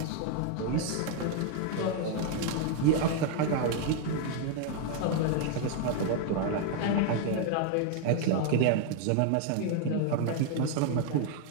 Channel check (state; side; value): different; both; correlation 0.00